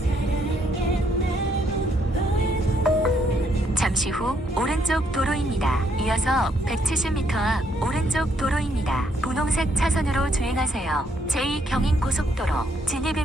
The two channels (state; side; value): normal; both; correlation 0.72